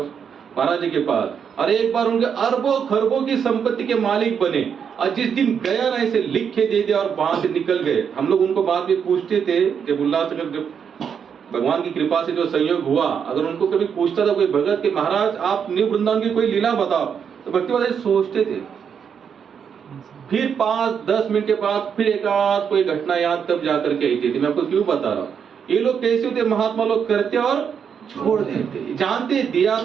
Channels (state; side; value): quieter; left; 7.3 dB